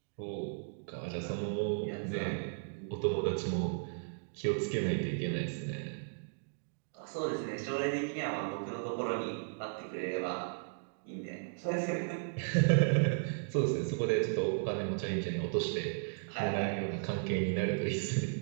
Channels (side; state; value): left; silent; digital silence